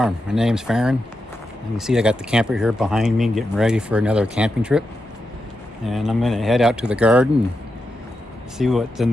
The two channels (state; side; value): normal; both; correlation 0.87